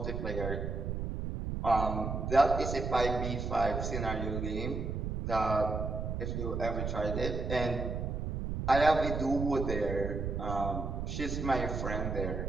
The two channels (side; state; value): right; noise; rumble, 3 dB below the sound